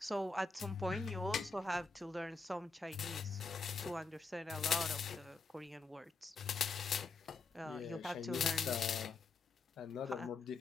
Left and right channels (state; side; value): quieter; right; 4.1 dB